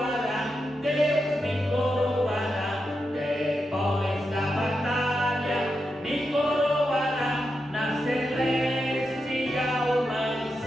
Deus me coroará. Depois da batalha me coroará na celestial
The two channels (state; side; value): normal; both; correlation 0.87